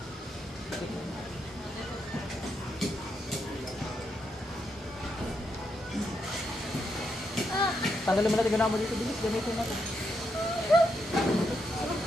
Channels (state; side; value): normal; both; correlation 0.81